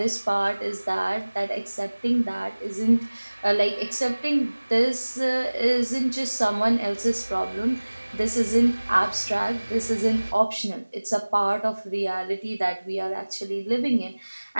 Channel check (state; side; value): inverted; both; correlation -1.00